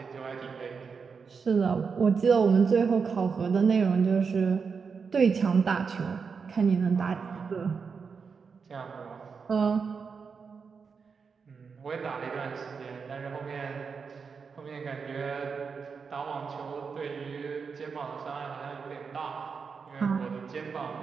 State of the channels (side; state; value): left; quieter; 5.6 dB